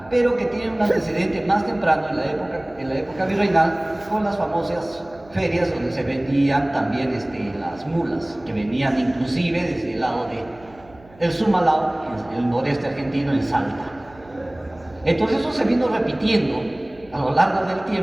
pero que tienen un antecedente más temprano en la época virreinal, con las famosas ferias donde se vendían también las mulas, que venían inclusive desde el lado del Sumalao, en el noreste argentino, en Salta. Entonces eso se vino repitiendo a lo largo del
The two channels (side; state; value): right; noise; hum, 25 dB below the sound